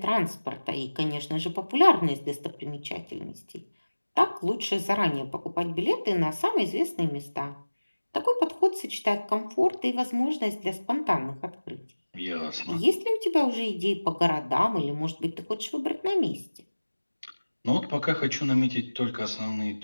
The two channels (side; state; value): both; inverted; correlation -1.00